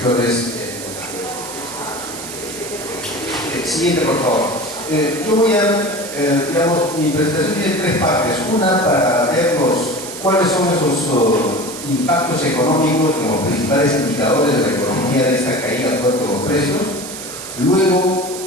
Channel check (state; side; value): noise; right; hiss, 10 dB below the sound